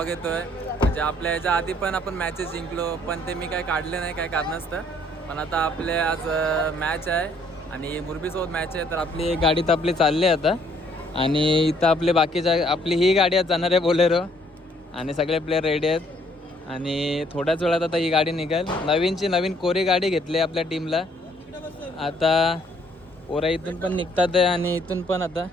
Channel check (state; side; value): normal; both; correlation 0.65